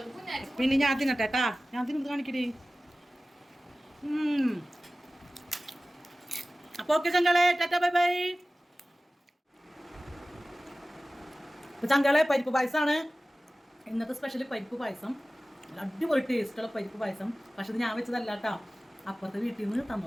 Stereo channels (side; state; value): both; normal; correlation 0.97